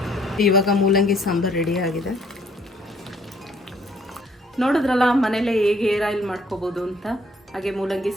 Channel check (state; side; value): normal; both; correlation 0.63